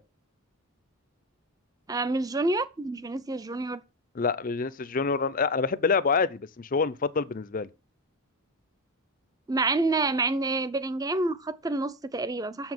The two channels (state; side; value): normal; both; correlation 0.14